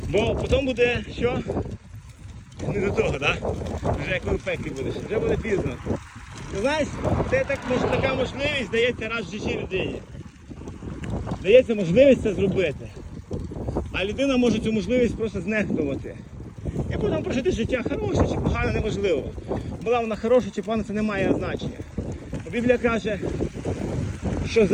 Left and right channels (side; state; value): both; identical; correlation 1.00